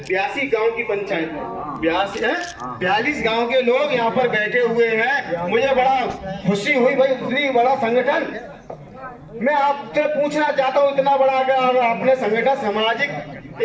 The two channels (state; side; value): identical; both; correlation 1.00